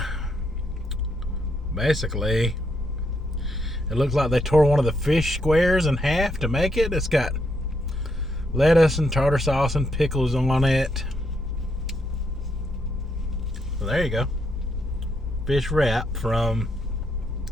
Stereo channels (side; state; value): both; normal; correlation 0.77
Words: basically, it looks like they tore one of the fish squares in half to make it. It's got lettuce and tartar sauce and pickles on it. So there you go. Fish wrap from